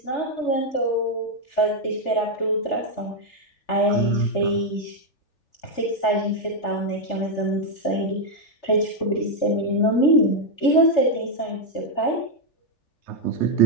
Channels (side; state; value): right; late; 3.4 ms